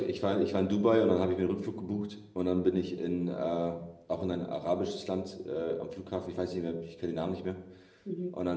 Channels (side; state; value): both; identical; correlation 1.00